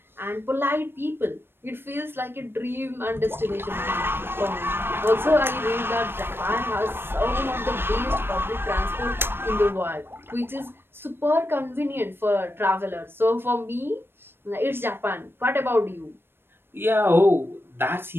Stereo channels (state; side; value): late; left; 0.10 ms